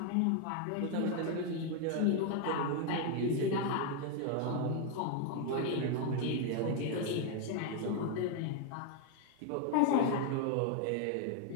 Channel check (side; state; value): both; different; correlation 0.00